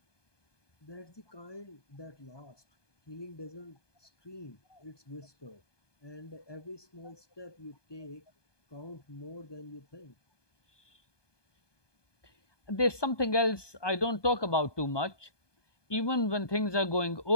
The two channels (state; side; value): late; right; 1.2 ms